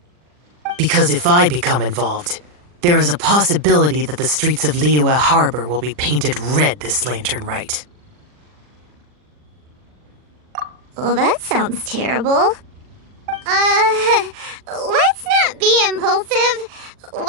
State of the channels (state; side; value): late; left; 40 ms